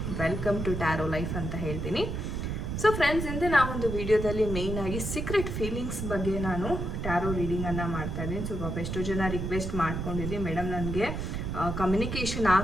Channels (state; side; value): noise; right; rumble, 3 dB below the sound